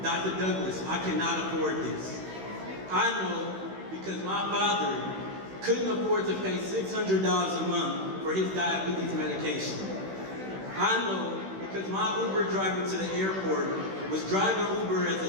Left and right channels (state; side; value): late; left; 16 ms